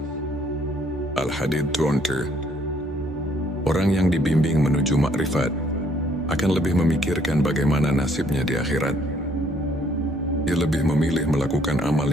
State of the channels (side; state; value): both; normal; correlation 0.65